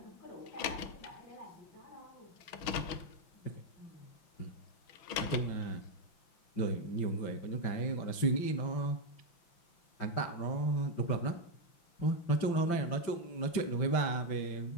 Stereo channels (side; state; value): right; late; 5.8 ms